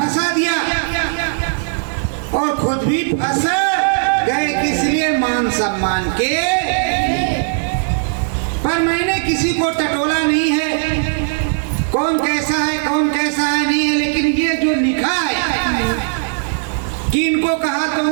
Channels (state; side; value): silent; left; digital silence